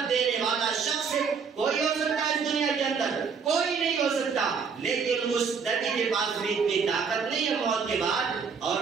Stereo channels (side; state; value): left; quieter; 5.8 dB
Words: دینے والا شخص کوئی ہو سکتا ہے اس دنیا کے اندر؟ کوئی نہیں ہو سکتا۔ لیکن اس نبی کے پاس بھی اتنی طاقت نہیں ہے موت کے بعد، اور